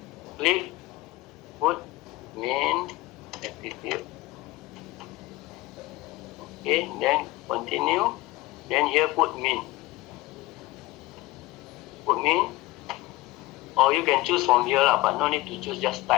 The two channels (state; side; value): quieter; right; 19.4 dB